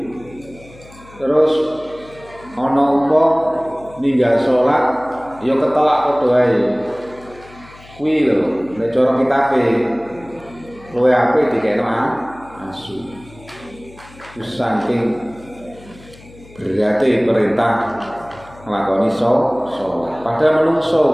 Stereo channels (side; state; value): left; noise; hum, 22 dB below the sound